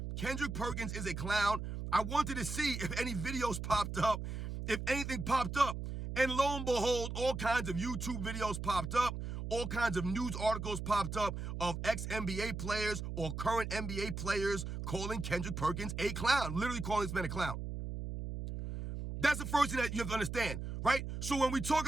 Kendrick Perkins is a clown. I wanted to see if any videos popped up, if anything popped up. And lo and behold, all kinds of YouTube videos popped up. All kinds of news articles popped up of ex-NBA players or current NBA players calling Kendrick Perkins a clown, literally calling this man a clown. That's the first thing that you have to understand, right? So when we talk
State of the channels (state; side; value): noise; right; hum, 5 dB below the sound